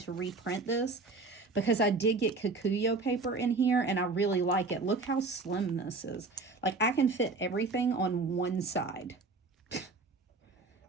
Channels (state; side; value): quieter; left; 3.7 dB